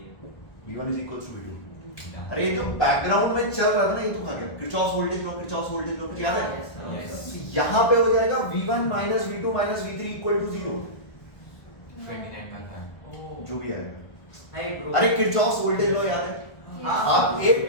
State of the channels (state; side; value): late; right; 1.5 ms